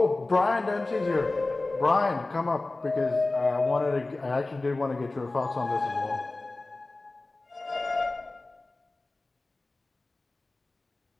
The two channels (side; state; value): right; quieter; 3.1 dB